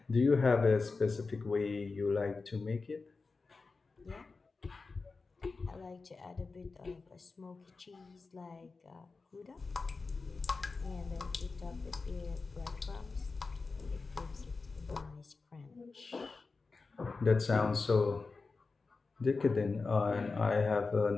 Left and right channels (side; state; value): right; quieter; 4.1 dB